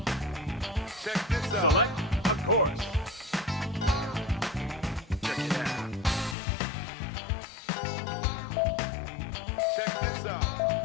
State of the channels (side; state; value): right; drops out; at 6.4 s